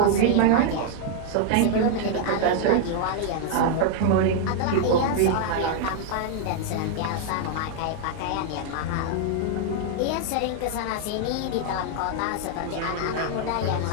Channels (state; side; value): different; both; correlation 0.00